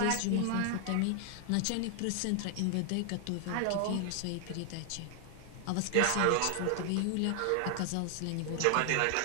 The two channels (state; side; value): different; both; correlation 0.00